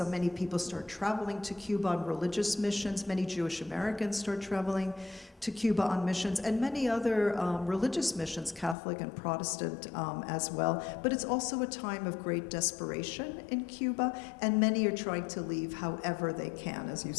many people start traveling to Cuba on religious missions. Many Jewish Americans start traveling to Cuba on missions, and many other religious missions, Catholic and Protestant as well. But it's also a time of great desperation in Cuba, and many are trying to leave however they can, as you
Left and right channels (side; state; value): right; drops out; at 8.8 s